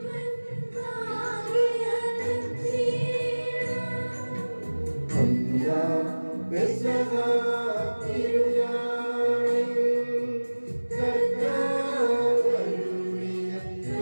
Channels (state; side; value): inverted; both; correlation -1.00